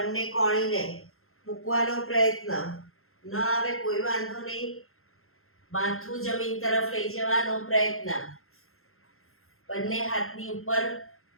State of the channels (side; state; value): right; late; 0.62 ms